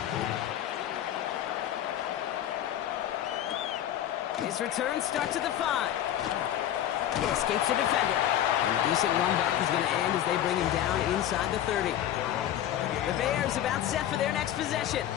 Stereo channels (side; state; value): right; quieter; 11.5 dB